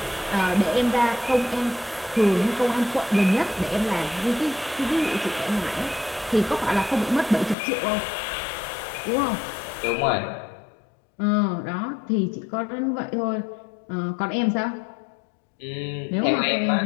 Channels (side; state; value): right; drops out; at 7.6 s